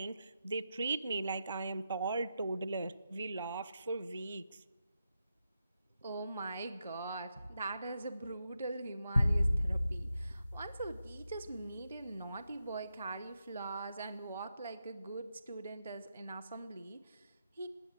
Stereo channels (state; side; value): inverted; both; correlation -0.86